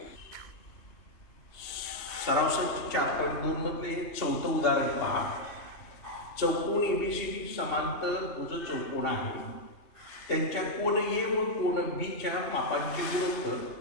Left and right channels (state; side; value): late; right; 3.2 ms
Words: सराव संच 4.2 मधले चौथं उदाहरण पहा. चौकोन एबीसीडी समांतर भुज चौकोन आहे. त्यांच्या कोन ए व कोन बी च्या मापांचे गुणोत्तर